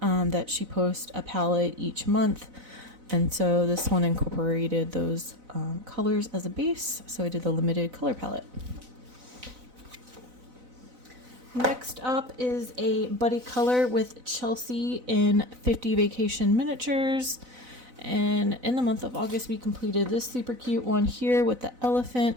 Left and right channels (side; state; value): left; late; 4.0 ms